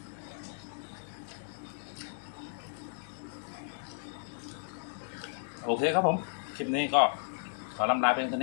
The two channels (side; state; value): right; silent; digital silence